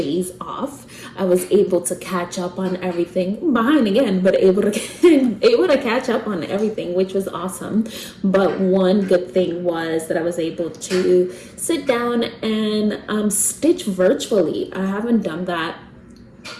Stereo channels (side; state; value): both; identical; correlation 1.00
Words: off. I was able to catch up on everything, behind again, but able to catch up on everything, which was awesome. But one good thing was that I was able to sit down and stitch virtually. I haven't done that